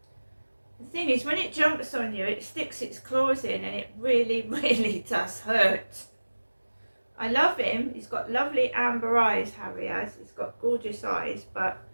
The thing is, when it jumps on you, it sticks its claws in, and it really, really does hurt. I love him. He's got lovely amber eyes, Harry has. He's got gorgeous eyes, but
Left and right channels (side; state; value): both; inverted; correlation -1.00